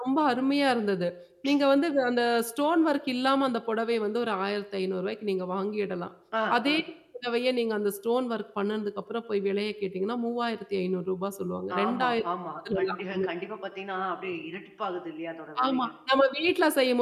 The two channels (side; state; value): both; identical; correlation 1.00